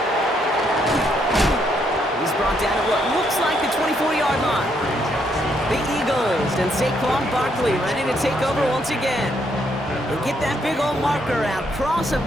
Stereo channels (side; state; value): both; normal; correlation 0.73